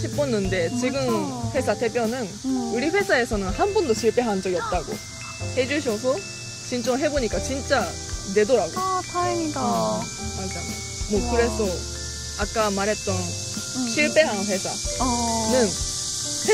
싶었는데 지금 회사 대표는 우리 회사에서는 한 번도 실패한 적이 없다고 해주셔서 신청해보니까 진짜 내더라고. 다행이다. 맞아. 뭐 그래서 아까 말했던 실패한 회사는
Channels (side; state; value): both; identical; correlation 1.00